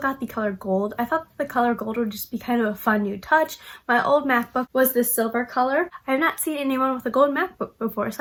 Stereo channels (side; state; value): both; identical; correlation 1.00